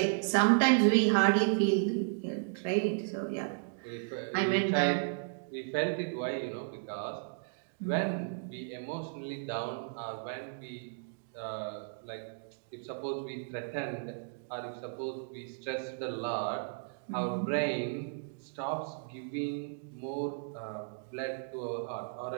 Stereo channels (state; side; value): silent; left; digital silence